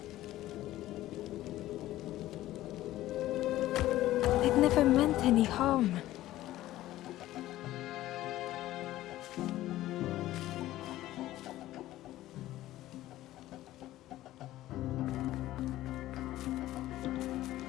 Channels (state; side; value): quieter; right; 15.1 dB